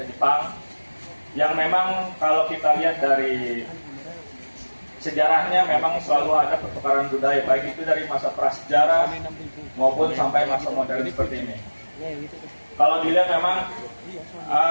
yang memang kalau kita lihat dari sejarahnya memang selalu ada pertukaran budaya, baik itu dari masa prasejarah maupun sampai masa modern seperti ini. Kalau dilihat memang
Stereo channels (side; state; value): both; inverted; correlation -1.00